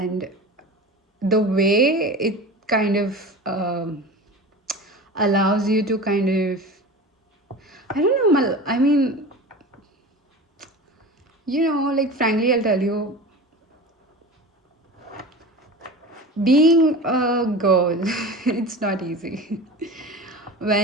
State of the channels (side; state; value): both; normal; correlation 0.33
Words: the way it kind of allows you to kind of, I don't know, I mean, like frankly, I'll tell you, being a girl, it's not easy.